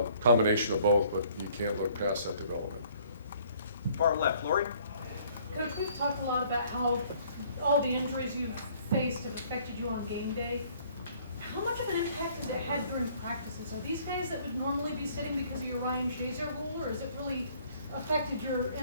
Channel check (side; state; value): both; inverted; correlation -0.59